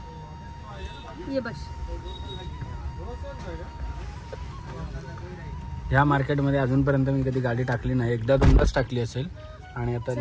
ये बस. ह्या मार्केटमध्ये अजूनपर्यंत मी कधी गाडी टाकली नाही, एकदा दोनदाच टाकली असेल. आणि आता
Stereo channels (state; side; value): identical; both; correlation 1.00